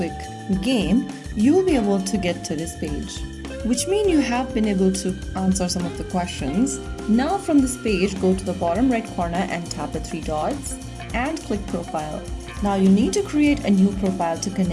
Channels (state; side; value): identical; both; correlation 1.00